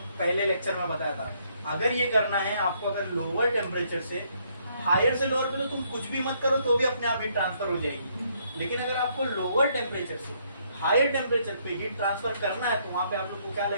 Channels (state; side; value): inverted; both; correlation -0.70